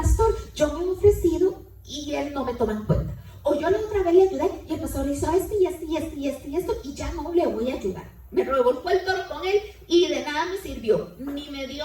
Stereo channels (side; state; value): both; identical; correlation 1.00